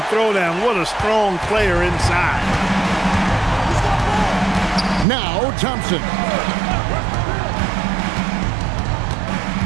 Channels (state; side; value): drops out; left; at 5.1 s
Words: throwdown. What a strong player inside. Now Thompson.